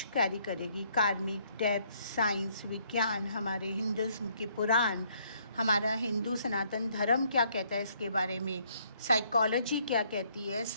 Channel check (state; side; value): inverted; both; correlation -0.67